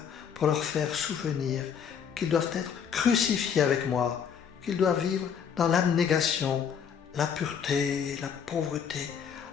pour leur faire souvenir qu'ils doivent être crucifiés avec moi, qu'ils doivent vivre dans l'abnégation, la pureté, la pauvreté,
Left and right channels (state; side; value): quieter; right; 7.5 dB